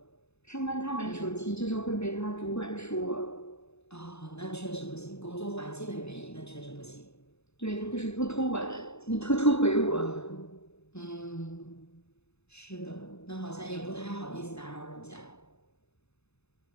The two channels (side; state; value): right; late; 0.80 ms